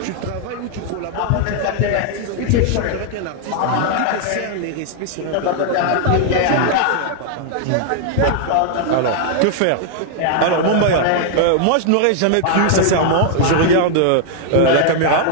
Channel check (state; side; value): different; both; correlation 0.00